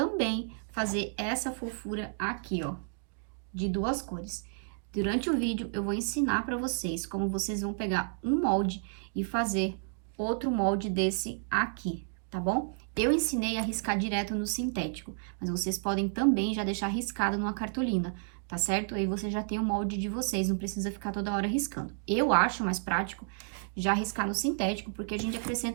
fazer essa fofura aqui, ó, de duas cores. Durante o vídeo eu vou ensinar para vocês como vocês vão pegar um molde e fazer outro molde desse aqui, tá bom? Eu ensinei a riscar direto no sintético, mas vocês podem também já deixar riscado numa cartolina, tá certo? Aí você já tem o molde de vocês, não precisa ficar toda hora riscando. Eu acho mais prático já riscar no sintético, porque a gente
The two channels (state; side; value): silent; left; digital silence